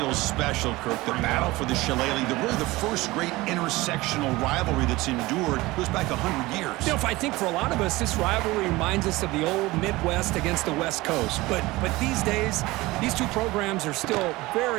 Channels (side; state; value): left; quieter; 20.2 dB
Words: special, Kirk. The battle for the Shillelagh, really the first great intersectional rivalry that's endured, goes back 100 years. You know, I think for a lot of us, this rivalry reminds us of the old Midwest against the West Coast. But these days, these two programs are still